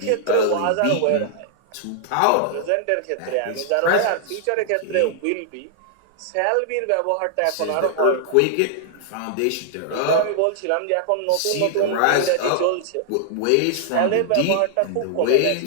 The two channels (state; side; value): different; both; correlation -0.01